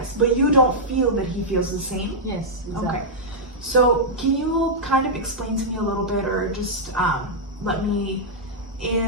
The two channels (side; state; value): both; normal; correlation -0.08